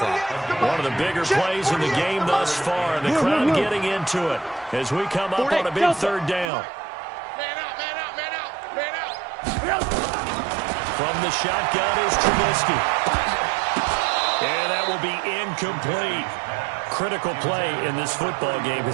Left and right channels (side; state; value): left; drops out; at 6.5 s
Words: One of the bigger plays in the game thus far, and the crowd getting into it as we come up on a big third down. Man up. From the shotgun is Trubisky. And that will be incomplete. Critical play in this football game,